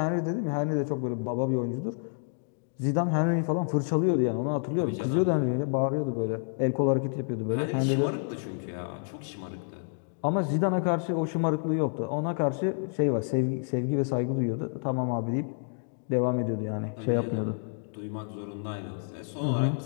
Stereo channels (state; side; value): silent; right; digital silence